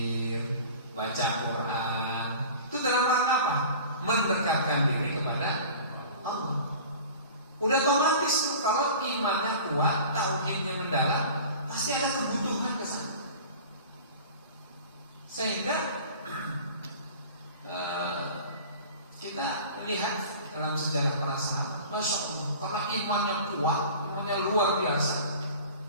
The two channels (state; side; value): inverted; both; correlation -0.41